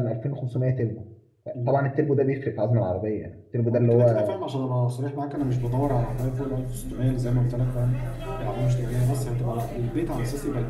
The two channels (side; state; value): both; identical; correlation 1.00